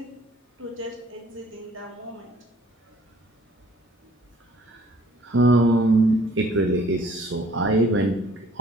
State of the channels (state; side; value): normal; both; correlation 0.58